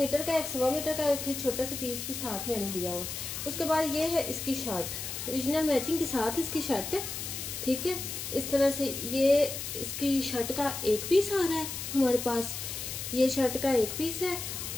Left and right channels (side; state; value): left; noise; hiss, 6 dB below the sound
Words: का, 1.25 मीटर का, फिर छोटा सा पीस भी साथ मैंने दिया हुआ। उसके बाद ये है इसकी शर्ट, ओरिजिनल मैचिंग के साथ इसकी शर्ट है, ठीक है। इस तरह से ये इसकी शर्ट का 1 पीस आ रहा है हमारे पास। ये शर्ट का 1 पीस है।